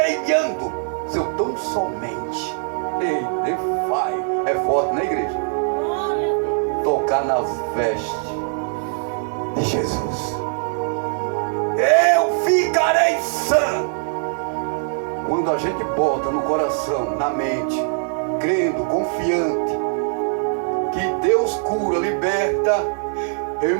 seu tão somente. Ei, defai. É forte, né, igreja? Tocar nas vestes de Jesus. Eu ficarei sã. Quando a gente bota no coração, na mente, crendo, confiante, que Deus cura, liberta, eu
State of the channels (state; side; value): silent; left; digital silence